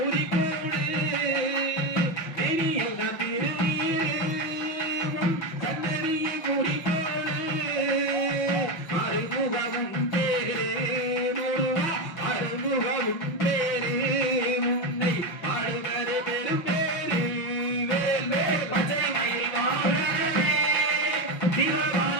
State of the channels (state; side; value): late; right; 5.6 ms